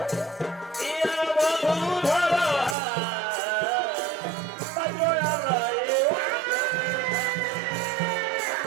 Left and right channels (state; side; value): drops out; left; at 2.8 s